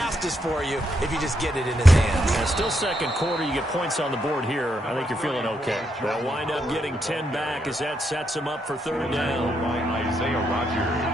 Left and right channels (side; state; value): both; normal; correlation 0.79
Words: for you if you just get it in his hands. Yeah, still 2nd quarter. You get points on the board here. I think you're feeling okay. They'll wind up getting 10 back as that sets them up for 3rd down. By Isaiah